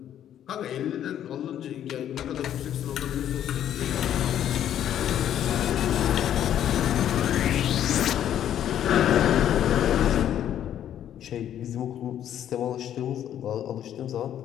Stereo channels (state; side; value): quieter; right; 10.6 dB